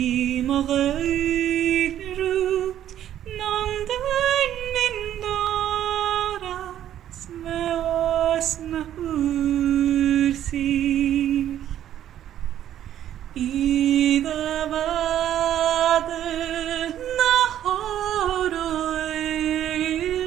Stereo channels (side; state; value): left; quieter; 11.3 dB